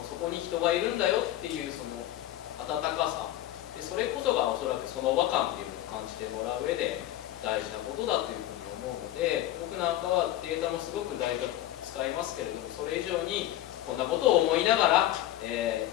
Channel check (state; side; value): quieter; right; 13.8 dB